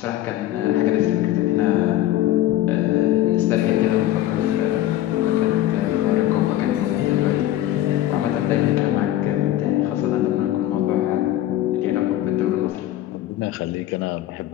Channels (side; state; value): right; quieter; 13.7 dB